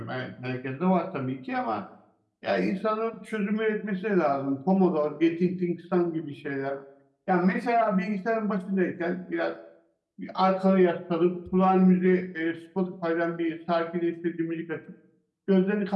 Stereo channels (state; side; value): identical; both; correlation 1.00